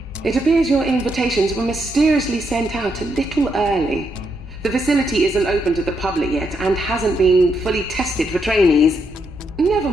It appears your invitations were mysteriously sent out a little early. The facility isn't open to the public yet and hasn't been fully tested for trainees. Never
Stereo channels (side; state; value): both; normal; correlation 0.79